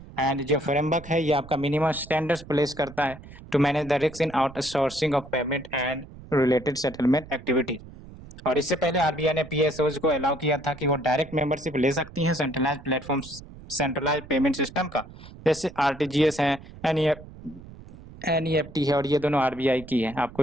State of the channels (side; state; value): right; noise; rumble, 17 dB below the sound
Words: एंड जो फ्रेमवर्क है ये आपका मिनिमम स्टैंडर्ड्स प्लेस करता है to manage the risk in outsourcing of payment and related settlement activities. और इससे पहले आरबीआई ने पीएसओज को अलाउ किया था कि वो डायरेक्ट मेंबरशिप ले सकती हैं centralised platform centralised payment system का, जैसे आरटीजीएस है, एनईएफटी है और ये दोनों आरबीआई की है, आपको